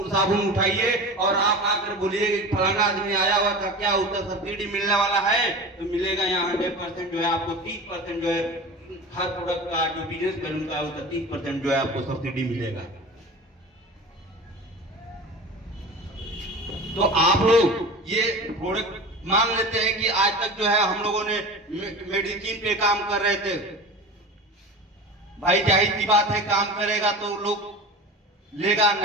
साबुन उठाइए और आप आकर बोलिए कि फलाना आदमी आया हुआ था, क्या उसका सब्सिडी मिलने वाला है? तो मिलेगा। यहाँ 100% जो है आपको 30% जो है हर प्रोडक्ट का जो बिजनेस कर उनका उसका 30% जो है आपको सब्सिडी मिलेगा। तो आप लोग ये प्रोडक्ट मान लेते हैं कि आज तक जो है हम लोगों ने मेडिसिन पे काम कर रहे थे। भाई जाहिर सी बात है, काम करेगा तो लोग लेगा,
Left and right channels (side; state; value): both; normal; correlation 0.33